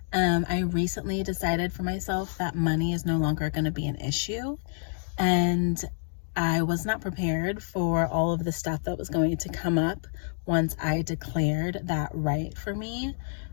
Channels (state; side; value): silent; right; digital silence